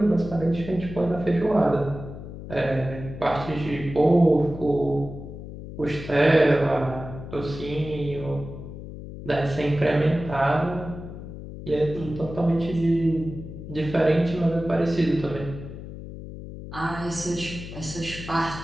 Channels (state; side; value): noise; left; hum, 11 dB below the sound